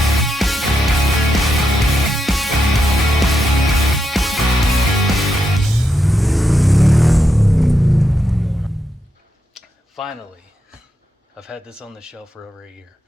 Finally, I've had this on the shelf for over a year.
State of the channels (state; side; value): normal; both; correlation 0.84